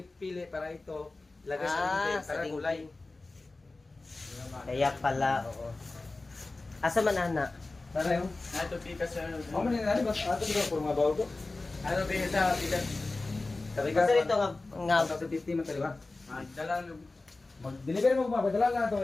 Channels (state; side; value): quieter; right; 3.3 dB